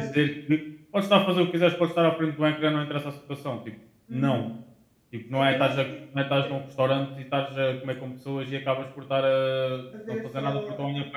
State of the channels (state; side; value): identical; both; correlation 1.00